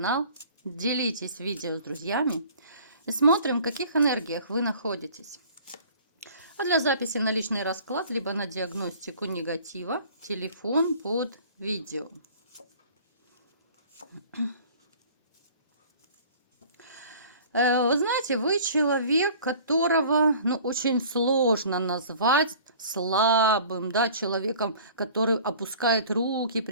делитесь видео с друзьями и смотрим, в каких энергиях вы находитесь. А для записи на личный расклад, либо на диагностику негатива, телефон под видео. Вы знаете, вы человек, которого, очень сложно назвать слабым, да, человеком, который опускает руки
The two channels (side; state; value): both; inverted; correlation -0.48